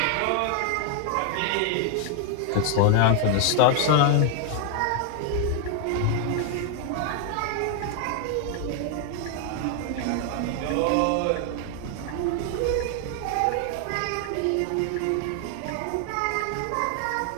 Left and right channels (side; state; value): both; different; correlation 0.00